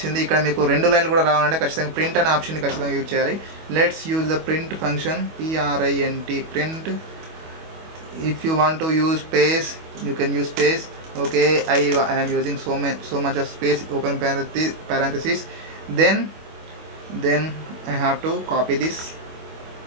ఇక్కడ మీకు రెండు లైన్లు కూడా రావాలంటే ఖచ్చితంగా ప్రింట్ అనే ఆప్షన్ ఖచ్చితంగా యూజ్ చేయాలి. Let's use the print function, PRINT, print. If you want to use space, you can use space. Okay, I am using so much of space, open parenthesis. Then I have to copy this,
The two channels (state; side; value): late; left; 25 ms